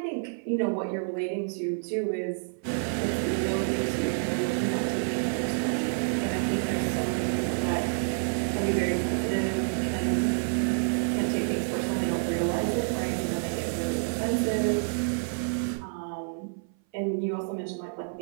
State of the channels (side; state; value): left; silent; 56 dB below the other